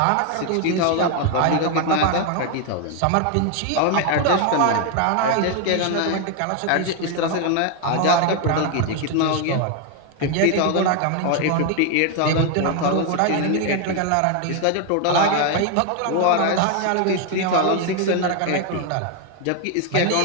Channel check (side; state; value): both; different; correlation 0.01